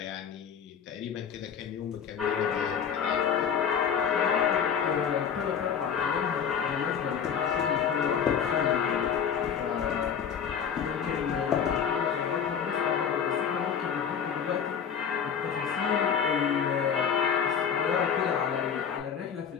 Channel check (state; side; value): quieter; right; 7.5 dB